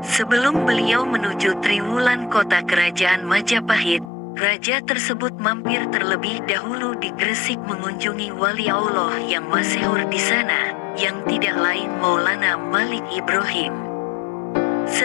Sebelum beliau menuju Triwulan, kota kerajaan Majapahit, raja tersebut mampir terlebih dahulu di Gresik mengunjungi wali Allah yang masyhur di sana, yang tidak lain Maulana Malik Ibrahim.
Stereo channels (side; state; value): right; drops out; at 4.1 s